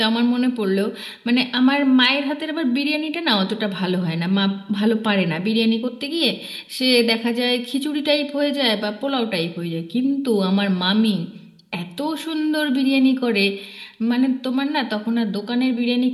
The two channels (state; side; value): identical; both; correlation 1.00